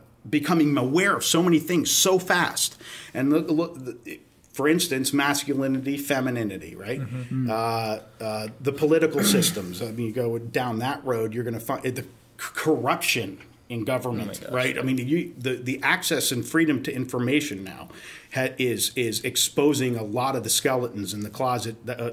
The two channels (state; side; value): identical; both; correlation 1.00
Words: becoming aware of so many things so fast. And look, for instance, masculinity, femininity, right? The political systems. I mean, you go down that road, you're going to find the corruption in government, right? I mean, the access and freedom to information now is exposing a lot of the skeletons in the closet